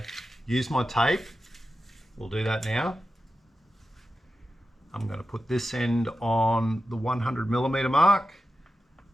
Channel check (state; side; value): normal; both; correlation 0.91